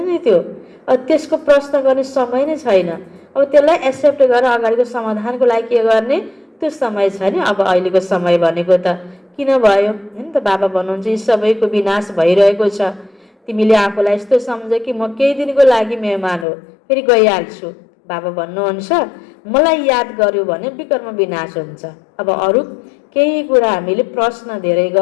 नि त्यो। त्यसको प्रश्न गर्ने समय नै छैन। अब त्यसलाई एक्सेप्ट गरेर अगाडिको समाधानको लागि के गर्ने त्यो समय छ नि। अब अहिलेको समय भनेको त किन भयो हैन त? बाबा भन्नुहुन्छ यी सबैको विनाश भइरहेको छ। तिमीले आफूलाई यस्तो सम्झ कि म केही दिनको लागि मेहमान हो, फेरि गइहाल्छु। बाबा भन्नुहुन्छ मलाई याद गर्यो भने विकर्म विनाश हुन्छ। अब अरू केही कुरा हामीले प्रश्न धेरै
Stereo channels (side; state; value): right; drops out; at 16.4 s